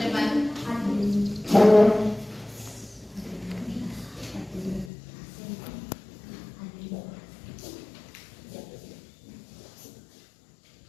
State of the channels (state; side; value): drops out; right; at 4.9 s